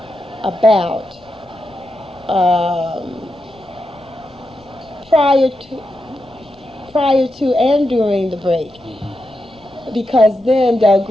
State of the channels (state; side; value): noise; left; rumble, 29 dB below the sound